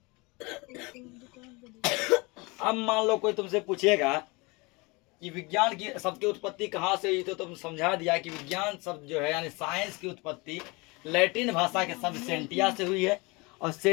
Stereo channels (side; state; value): right; quieter; 26.4 dB